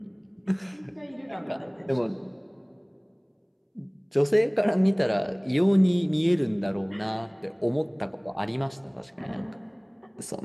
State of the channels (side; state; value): both; identical; correlation 1.00